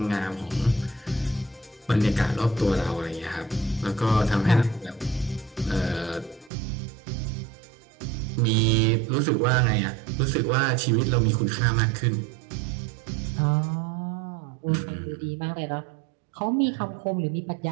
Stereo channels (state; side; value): drops out; left; at 6.5 s